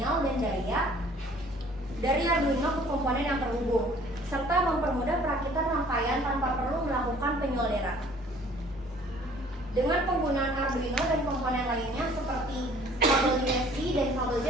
dan daya dari Arduino ke komponen yang terhubung, serta mempermudah perakitan rangkaian tanpa perlu melakukan penyolderan. Dengan penggunaan Arduino dan komponen lainnya seperti kabel USB dan kabel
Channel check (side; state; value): both; normal; correlation 0.54